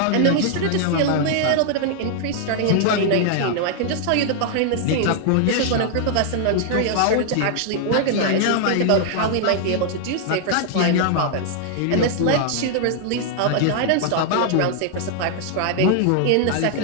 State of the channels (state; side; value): different; both; correlation 0.00